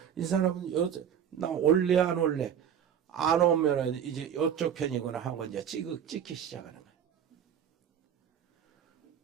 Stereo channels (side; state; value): left; quieter; 8.8 dB